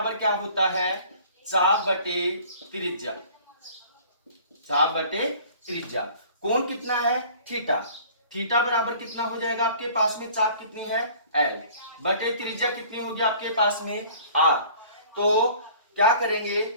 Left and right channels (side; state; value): both; inverted; correlation -0.49